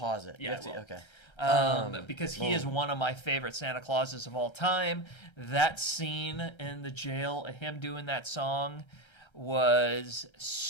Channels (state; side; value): late; right; 1.3 ms